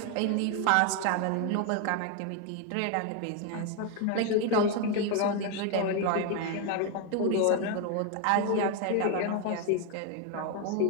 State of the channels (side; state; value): both; different; correlation 0.01